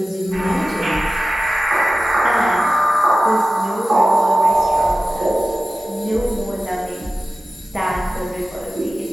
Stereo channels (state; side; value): normal; both; correlation 0.95